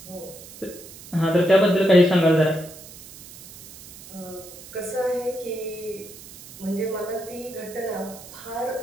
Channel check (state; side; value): noise; right; hiss, 17 dB below the sound